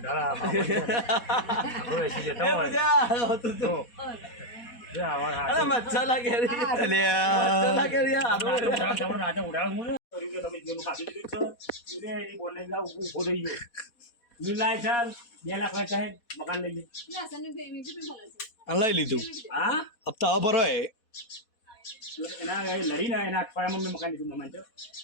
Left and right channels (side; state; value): right; late; 4.1 ms